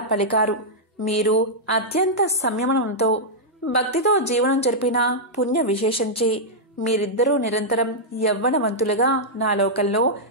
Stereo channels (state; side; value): normal; both; correlation -0.07